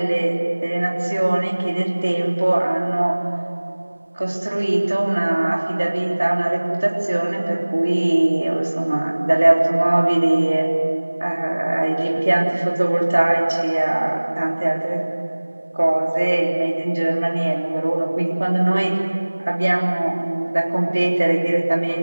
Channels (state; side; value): inverted; both; correlation -1.00